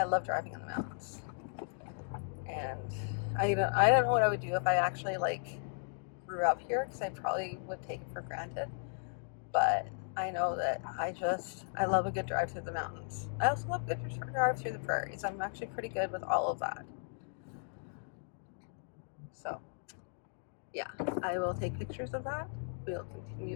love driving in the mountains, and I don't know what I would do if I actually like grew up here because I probably would take it for granted. But I know that I love a good drive through the mountains. I also love a good drive through the prairies. I'm actually pretty good with all of that. So yeah, I will take pictures of that. We'll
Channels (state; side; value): silent; right; digital silence